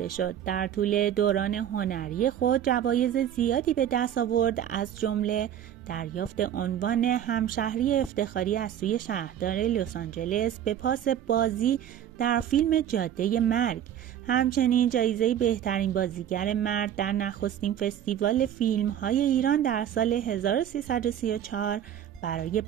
شد. در طول دوران هنری خود جوایز زیادی به دست آورد، از جمله دریافت عنوان همشهری افتخاری از سوی شهردار لس آنجلس به پاس بازی در فیلم جاده مرگ. همچنین جایزه بهترین بازیگر مرد در نخستین فستیوال فیلم‌های ایران در سال 1334 برای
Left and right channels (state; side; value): quieter; left; 10.2 dB